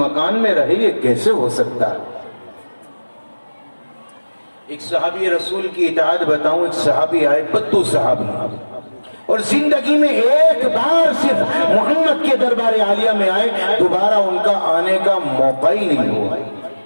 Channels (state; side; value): inverted; both; correlation -1.00